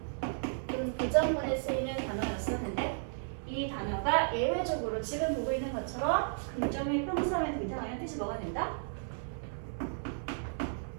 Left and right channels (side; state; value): left; silent; 55 dB below the other